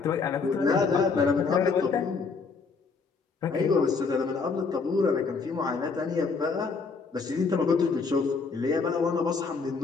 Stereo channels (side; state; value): right; quieter; 4.8 dB